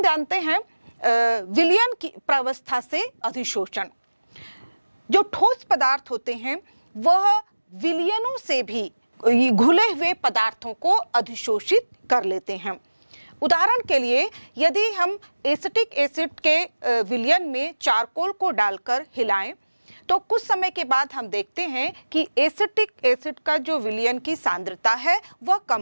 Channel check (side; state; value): both; inverted; correlation -1.00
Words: हम जानते हैं विलयन की प्रावस्था से अधिशोषण। जो ठोस पदार्थ होते हैं वह विलयनों से भी घुले हुए पदार्थों को अधिशोषित कर लेते हैं। उदाहरण के लिए यदि हम एसिटिक एसिड के विलयन में चारकोल को डालकर हिलाएं तो कुछ समय के बाद हम देखते हैं कि एसिटिक एसिड का जो विलयन की सांद्रता है वह